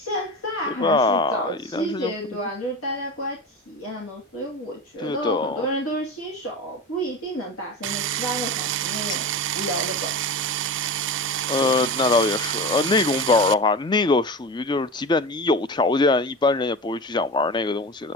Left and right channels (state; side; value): normal; both; correlation 0.28